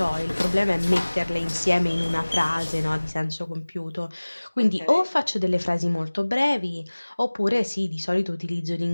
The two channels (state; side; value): inverted; both; correlation -1.00